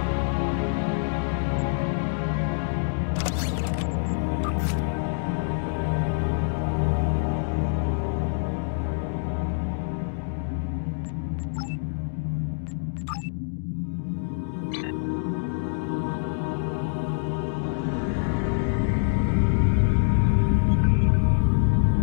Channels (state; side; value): silent; right; digital silence